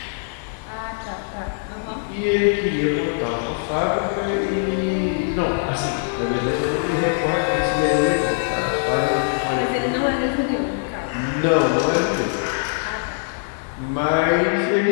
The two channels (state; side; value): silent; right; digital silence